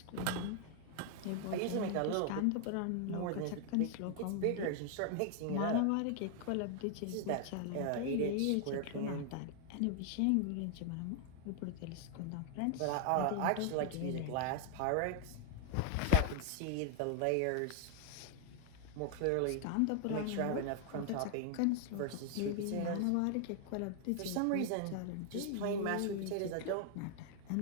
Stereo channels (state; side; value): different; both; correlation 0.00